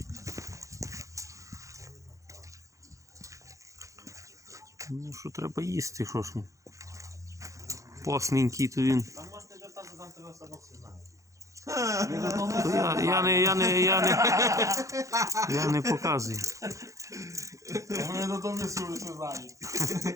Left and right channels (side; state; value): left; late; 0.15 ms